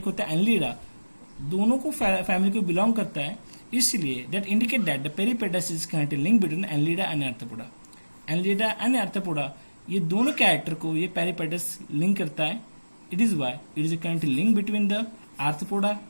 होता है एनलिडा, दोनों को फैमिली को बिलोंग करता है, इसलिए that indicate that the peripatus is connected link between annelida and arthropoda. Annelida and arthropoda ये दोनों कैरेक्टर को ये पेरिपेटस लिंक करता है। It is why it is a connected link between the arthropoda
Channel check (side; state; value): both; inverted; correlation -1.00